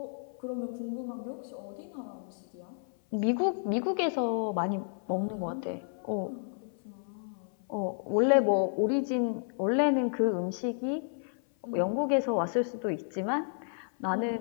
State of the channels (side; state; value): right; silent; 55 dB below the other